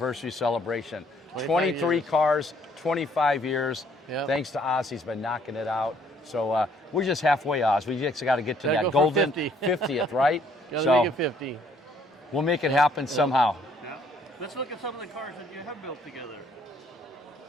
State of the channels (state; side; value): normal; both; correlation 0.64